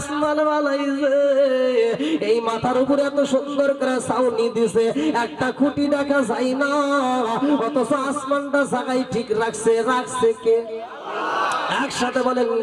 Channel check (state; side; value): identical; both; correlation 1.00